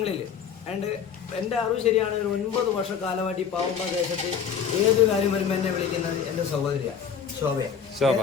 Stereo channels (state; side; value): quieter; right; 7.3 dB